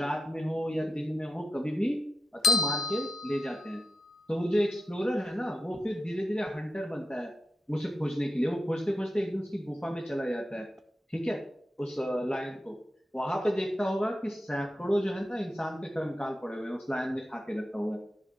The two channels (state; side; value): normal; both; correlation 0.89